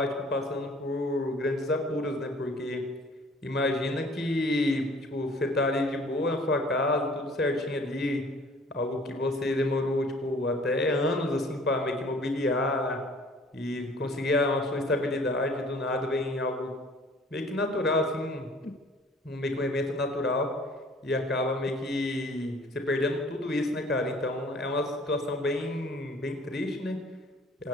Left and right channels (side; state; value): both; normal; correlation 0.52